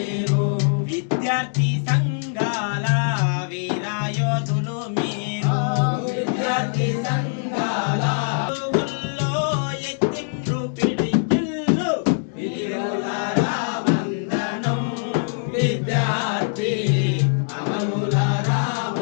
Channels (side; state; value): right; silent; digital silence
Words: విద్యార్థి సంఘాల వీరాయోధులు మీరు విద్యార్థి సంఘాల ఊళ్ళో ఎత్తిండ్రు పిడికిళ్ళు వీరులారా వందనం విద్యార్థి అమరులారా